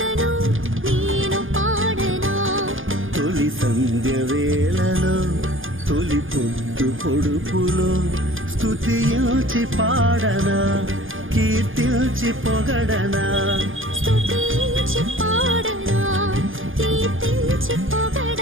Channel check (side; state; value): left; late; 0.58 ms